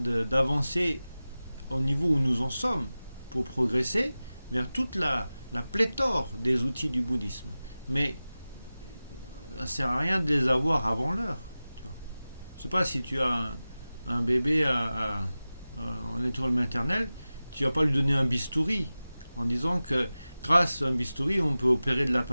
au niveau où nous en sommes pour progresser vers toute la pléthore des outils du bouddhisme. Mais ça ne sert à rien de les avoir avant l'heure. Je ne sais pas si tu as un bébé en étoile maternelle, tu ne vas pas lui donner un bistouri en disant que grâce à un bistouri, on peut opérer de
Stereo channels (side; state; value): both; inverted; correlation -0.96